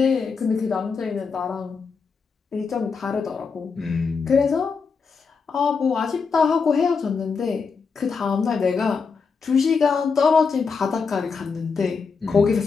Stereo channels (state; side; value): quieter; right; 5.3 dB